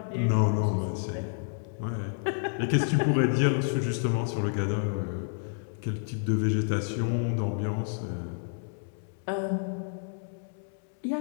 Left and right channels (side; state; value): right; silent; 58 dB below the other